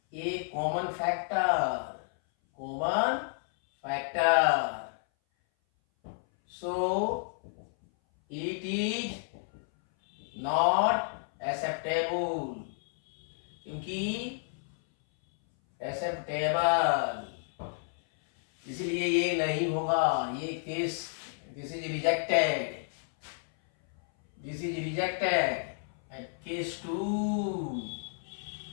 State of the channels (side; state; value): right; silent; 57 dB below the other